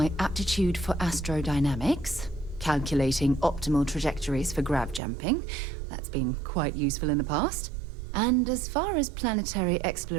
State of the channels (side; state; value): left; drops out; at 5.0 s